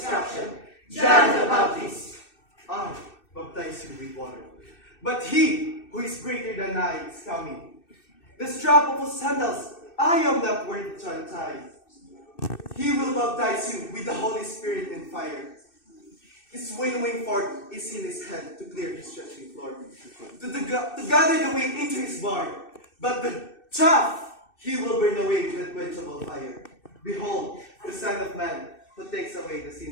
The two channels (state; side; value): late; right; 2.6 ms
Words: John the Baptist. I baptize you with water, but he who is greater than I is coming. The strap of his sandals I am not worthy to untie. He will baptize you with the Holy Spirit and fire. His winnowing fork is in his hand to clear his threshing floor, to gather the wheat into his barn, but the chaff he will burn away with unquenchable fire. Behold, the Son of Man, who takes away the